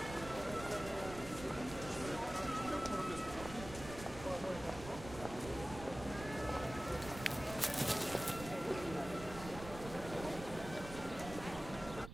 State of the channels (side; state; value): right; noise; rumble, 11 dB below the sound